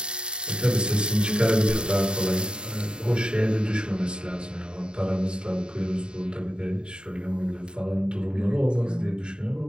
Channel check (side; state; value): left; late; 0.050 ms